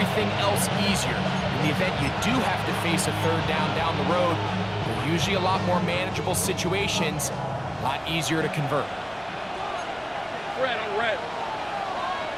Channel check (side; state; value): both; identical; correlation 1.00